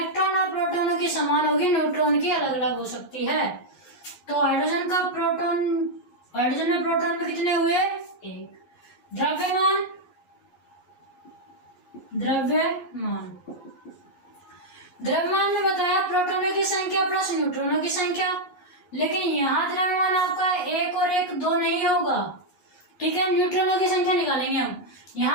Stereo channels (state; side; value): late; right; 11 ms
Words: और प्रोटॉनों की समान होगी, न्यूट्रॉन की अलग अलग हो सकती है। तो हाइड्रोजन का प्रोटॉन, हाइड्रोजन में प्रोटॉन में कितने हुए, 1। द्रव्यमान, द्रव्यमान, द्रव्यमान में बताया प्रोटॉनों की संख्या प्लस न्यूट्रॉनों की संख्या, लेकिन यहाँ द्रव्यमान आपका 1 और 1 2 नहीं होगा, ठीक है। न्यूट्रॉनों की संख्या निकालेंगे हम।